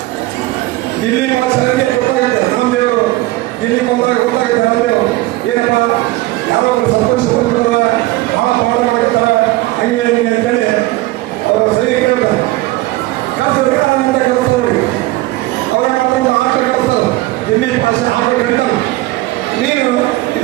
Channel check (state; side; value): quieter; left; 18.6 dB